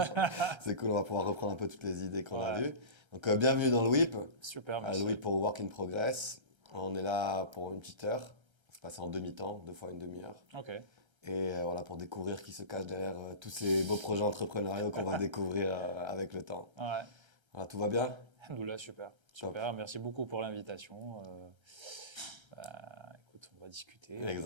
c'est cool, on va pouvoir reprendre un peu toutes les idées qu'on a Ouais, vues. Donc, bienvenue dans le WIP. super, Le merci. WIP pour Work in Progress. On est là pour une petite heure. On se passe en demi-temps, 2 fois une demi-heure. Ok. Et voilà, pour découvrir qui se cache derrière tous ces beaux projets entrepreneuriaux qu'on va découvrir avec le temps. Ouais. Voilà, tout va bien? Alhamdoulilah, super. Top. Super. Merci beaucoup pour l'invitation. Écoute, on va discuter.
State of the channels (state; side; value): late; left; 1.3 ms